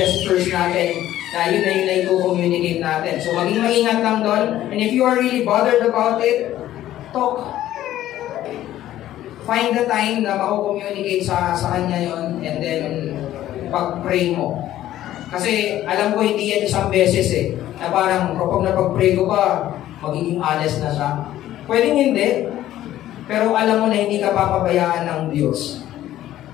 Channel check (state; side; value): quieter; right; 13.3 dB